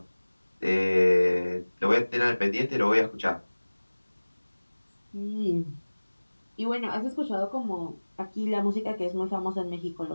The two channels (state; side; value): inverted; both; correlation -1.00